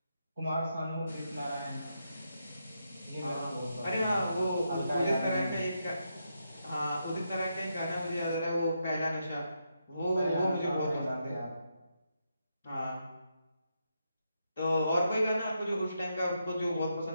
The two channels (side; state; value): both; inverted; correlation -0.82